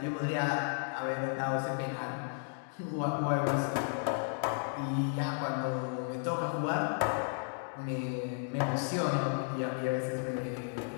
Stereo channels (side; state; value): right; silent; 55 dB below the other